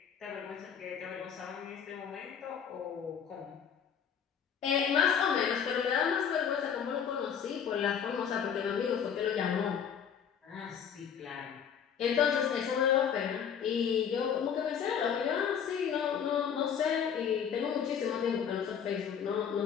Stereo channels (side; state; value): right; quieter; 7.8 dB